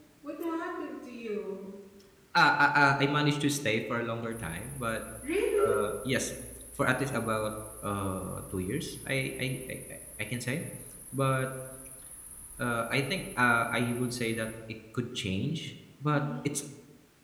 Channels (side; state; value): both; identical; correlation 1.00